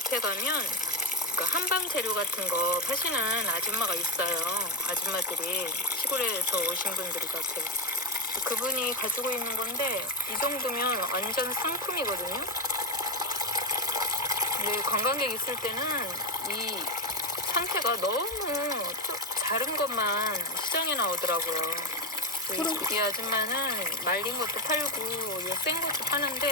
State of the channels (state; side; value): normal; both; correlation 0.10